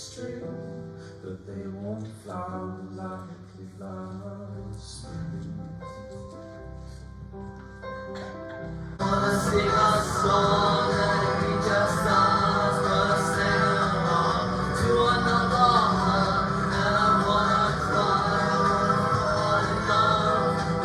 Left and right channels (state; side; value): identical; both; correlation 1.00